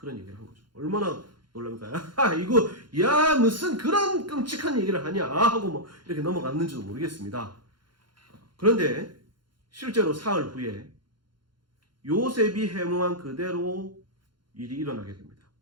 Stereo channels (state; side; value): late; left; 0.72 ms